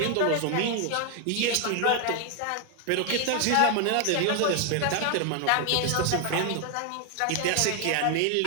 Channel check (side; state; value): both; different; correlation 0.01